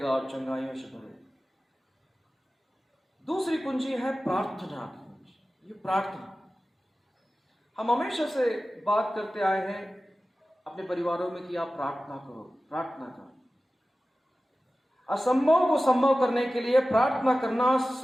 और चंगाइयों से भरेगा। दूसरी कुंजी है प्रार्थना की कुंजी। ये प्रार्थना हम हमेशा से बात करते आए हैं अपने परिवारों में कि आप प्रार्थना करो, प्रार्थना करो। असंभव को संभव करने के लिए प्रार्थना करना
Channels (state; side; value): normal; both; correlation 0.95